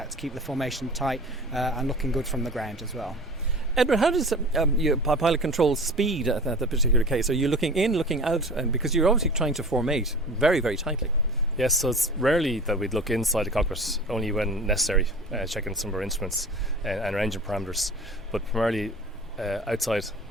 to keep the formation tight and looking good from the ground as well. Edward, how does your pilot control speed at that particular case? Are you looking in, looking out? Because you're obviously trying to formate very, very tightly. Yes, so it's rarely that we'd look inside the cockpit, only when necessary, checking some of our instruments and our engine parameters. But primarily outside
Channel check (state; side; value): normal; both; correlation 0.39